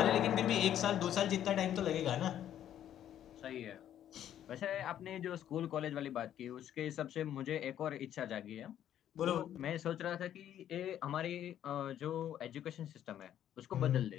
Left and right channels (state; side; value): quieter; right; 10.8 dB